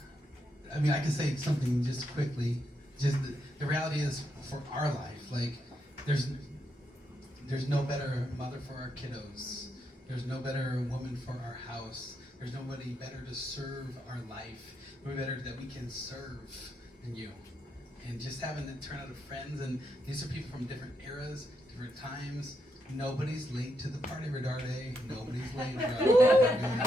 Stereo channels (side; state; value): both; normal; correlation 0.81